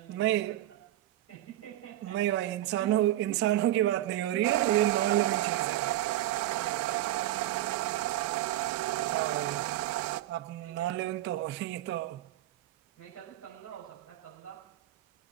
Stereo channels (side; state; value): left; quieter; 14.3 dB